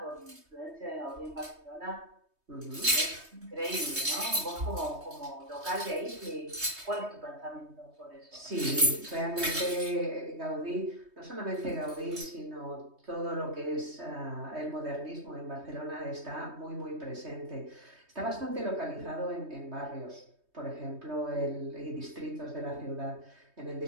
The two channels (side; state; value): left; late; 3.2 ms